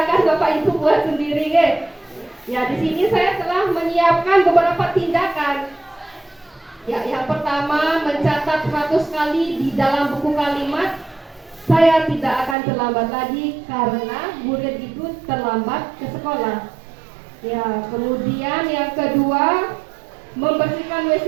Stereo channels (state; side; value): drops out; left; at 12.6 s